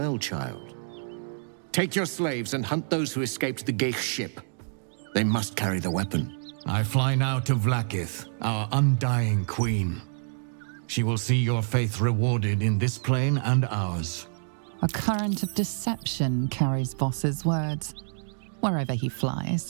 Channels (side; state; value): left; silent; digital silence